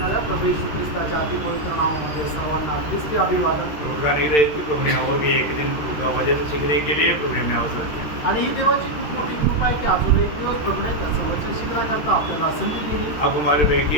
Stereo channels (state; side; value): late; right; 13 ms